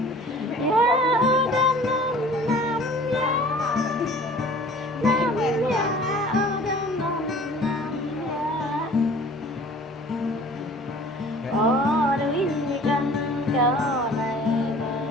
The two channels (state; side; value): normal; both; correlation 0.48